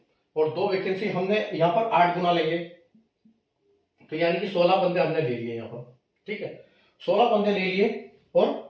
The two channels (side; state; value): both; identical; correlation 1.00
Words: और 2 वैकेंसी हमने यहाँ पर 8 गुना लेंगे, तो यानी कि 16 बंदे हमने ले लिए यहाँ पर। ठीक है, 16 बंदे ले लिए और